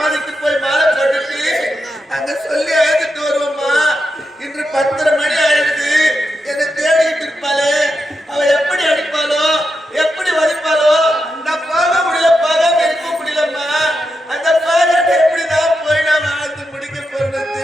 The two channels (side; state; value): both; normal; correlation 0.86